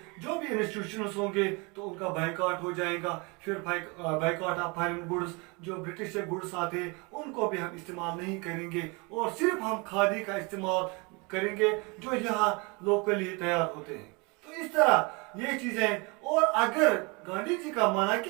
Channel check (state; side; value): quieter; left; 29.0 dB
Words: जो भी इंस्टीट्यूशंस होंगे तो उनका बाइकआउट हो जाएगा। फिर बाइकआउट ऑफ फॉरेन गुड्स, जो ब्रिटिश से गुड्स आते हैं उनको भी हम इस्तेमाल नहीं करेंगे और सिर्फ हम खादी का इस्तेमाल करेंगे जो यहाँ लोकली तैयार होते हैं। तो इस तरह ये चीजें, और अगर गांधी जी का माना कि